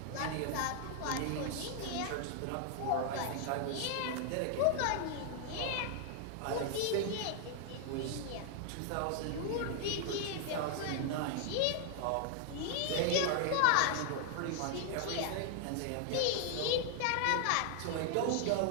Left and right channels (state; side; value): different; both; correlation 0.00